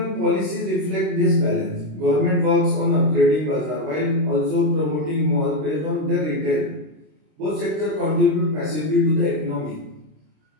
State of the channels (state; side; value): late; left; 26 ms